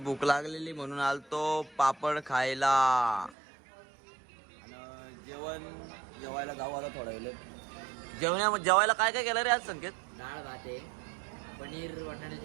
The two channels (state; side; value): drops out; left; at 3.4 s